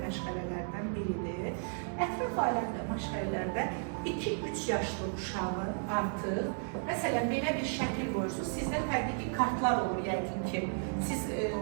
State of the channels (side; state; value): left; silent; 55 dB below the other